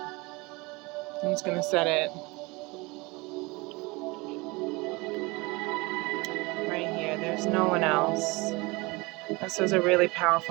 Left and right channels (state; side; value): quieter; left; 24.7 dB